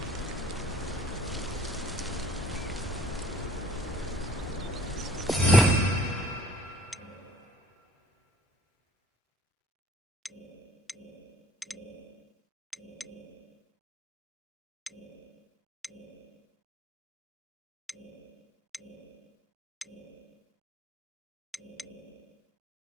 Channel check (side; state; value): both; normal; correlation 0.53